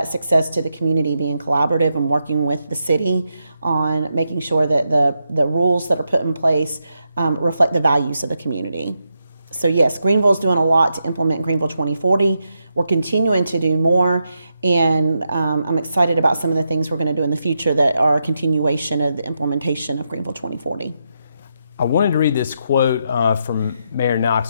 success to the community being collaborative and working with the city on making sure that the rules that are put in place reflect the values of the community. So yes, Greenville's doing a lot to implement Greenville 2040. We're continuing to do more, and I'm excited about some of the things we're going to do in the future that are a continuation of the implementation of Greenville 2040. I wanted to read this quote from Mayor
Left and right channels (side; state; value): both; inverted; correlation -0.84